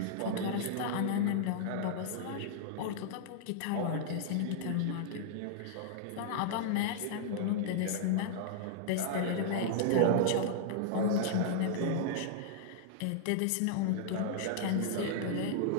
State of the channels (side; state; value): both; different; correlation -0.01